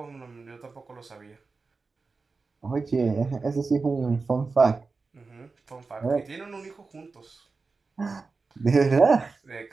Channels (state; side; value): quieter; left; 4.2 dB